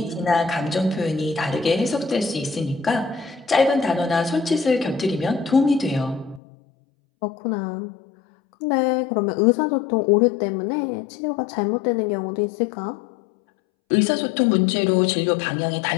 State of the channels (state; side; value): drops out; right; at 6.4 s